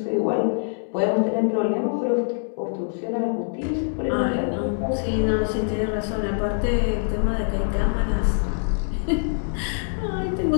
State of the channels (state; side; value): silent; right; digital silence